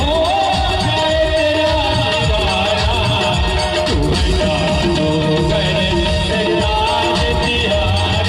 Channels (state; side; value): identical; both; correlation 1.00